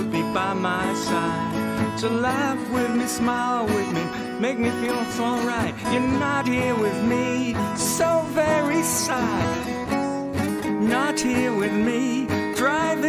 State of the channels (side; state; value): both; identical; correlation 1.00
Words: be by my side, to laugh with me, smile with me, make me feel it's alright. You're not here with me, so very sad. Not here with me,